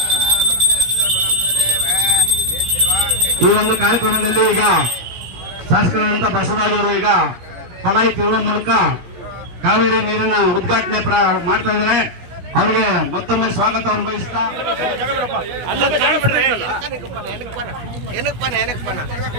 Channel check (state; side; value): late; left; 17 ms